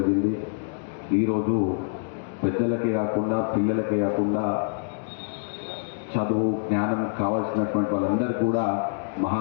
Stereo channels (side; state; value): right; silent; digital silence